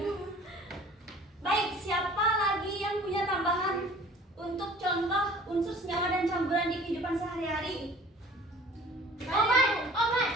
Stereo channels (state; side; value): normal; both; correlation 0.48